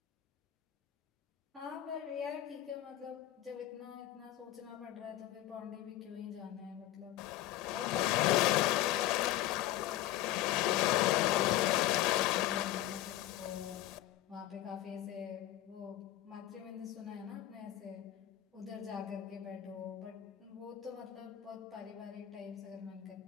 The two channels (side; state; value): right; quieter; 14.1 dB